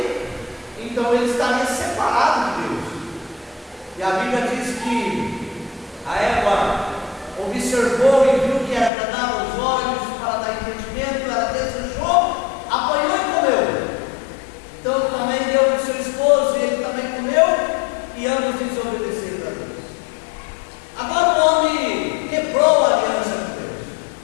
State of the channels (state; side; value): drops out; right; at 8.9 s